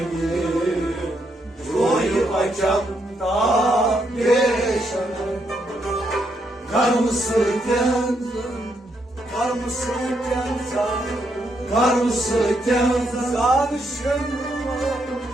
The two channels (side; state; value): both; normal; correlation 0.77